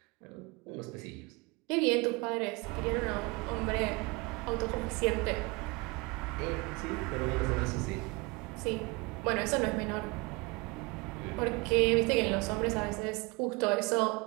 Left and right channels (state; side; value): quieter; left; 26.7 dB